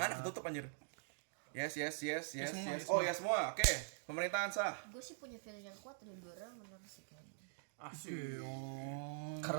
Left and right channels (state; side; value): silent; left; digital silence